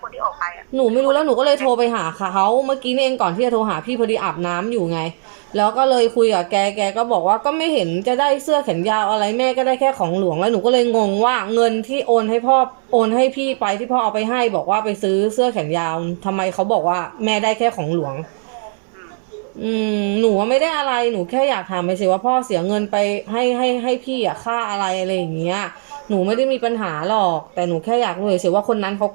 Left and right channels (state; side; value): silent; left; 67 dB below the other